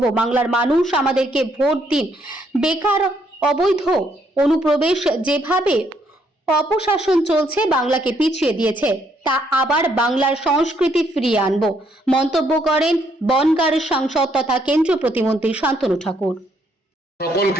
বাংলার মানুষ আমাদেরকে ভোট দিন। বেকার, অবৈধ অনুপ্রবেশ, যেভাবে অপশাসন চলছে বাংলাকে পিছিয়ে দিয়েছে, তা আবার বাংলার সংস্কৃতি ফিরিয়ে আনব, মন্তব্য করেন বনগাঁর সাংসদ তথা কেন্দ্রীয় প্রতিমন্ত্রী শান্তনু ঠাকুর।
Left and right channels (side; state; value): both; normal; correlation 0.71